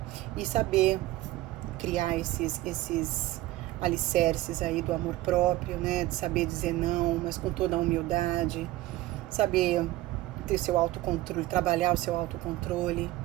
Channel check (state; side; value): quieter; left; 17.2 dB